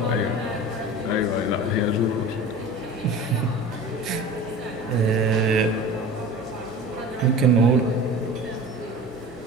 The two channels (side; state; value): both; normal; correlation 0.37